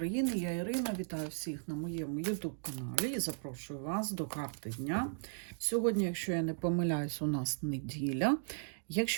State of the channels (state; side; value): silent; left; digital silence